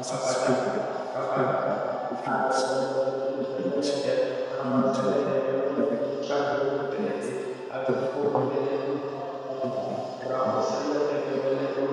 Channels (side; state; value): both; identical; correlation 1.00